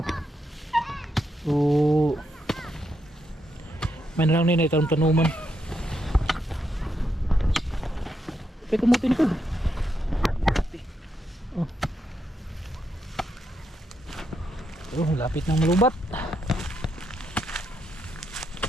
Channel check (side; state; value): both; normal; correlation 0.81